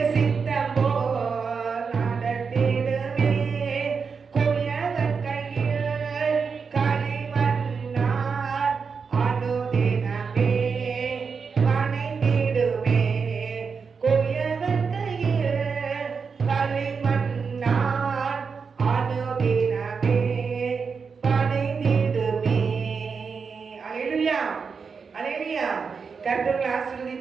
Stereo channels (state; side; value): quieter; left; 5.5 dB